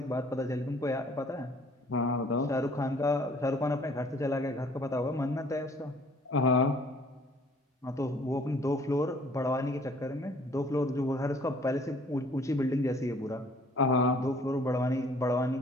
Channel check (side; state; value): both; normal; correlation 0.57